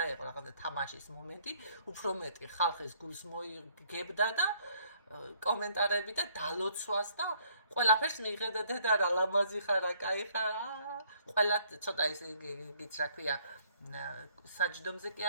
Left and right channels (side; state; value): both; inverted; correlation -0.64